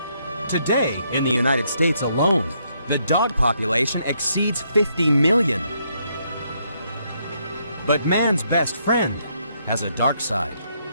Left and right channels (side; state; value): both; inverted; correlation -0.74